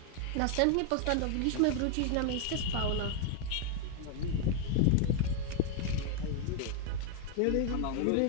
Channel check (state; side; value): different; both; correlation 0.00